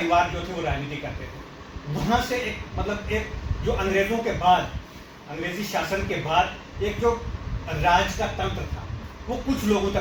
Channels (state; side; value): identical; both; correlation 1.00